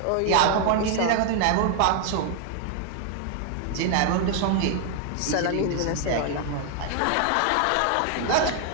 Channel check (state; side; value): different; both; correlation 0.00